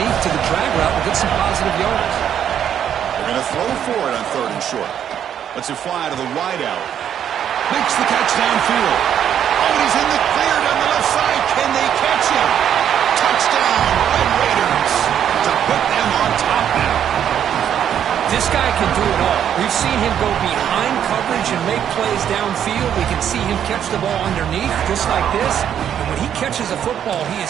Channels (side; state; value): left; quieter; 9.4 dB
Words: to the drag route and gets some positive yards. They're going to throw for it on third and short. Lets it fly to the wideout. Makes the catch downfield. Oh, he's in the clear down the left side. Can they catch him? Touchdown, Red Raiders. To put them on top now. This guy can do it all. We've seen him go behind coverage and make plays downfield. We can see him catch the ball underneath, just like this. And when he catches a football, he is